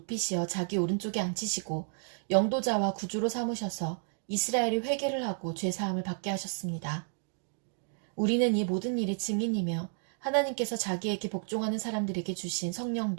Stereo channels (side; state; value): left; silent; 57 dB below the other